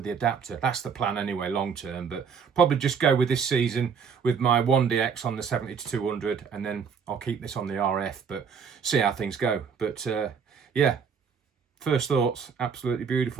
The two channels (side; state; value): left; quieter; 6.4 dB